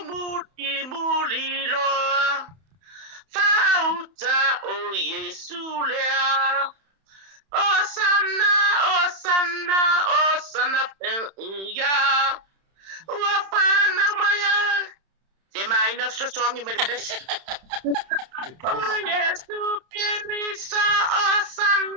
muli loa. Fauta o Yesu lea. Osana ya. Ua whana maya. Te mai na sosongi me le pese. Oh Yesu Kirisa,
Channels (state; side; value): late; left; 31 ms